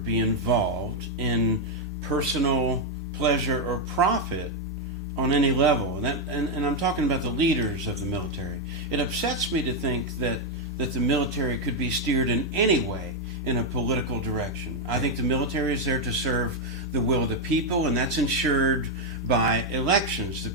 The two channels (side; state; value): left; noise; hum, 29 dB below the sound